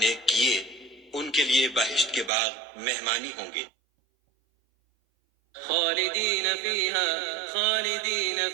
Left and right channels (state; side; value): drops out; left; at 2.3 s